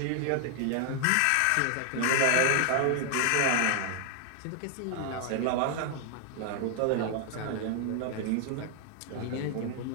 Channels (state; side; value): different; both; correlation 0.00